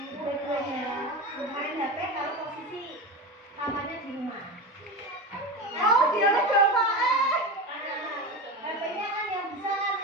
dua-duanya main HP kalau posisi kamarnya di rumah. Oh, dia lo coba HP-nya kan yang besar,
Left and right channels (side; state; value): both; normal; correlation 0.22